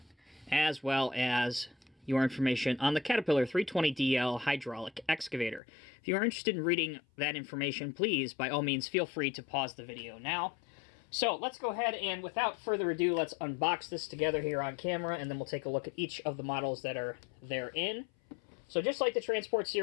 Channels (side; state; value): right; drops out; at 5.6 s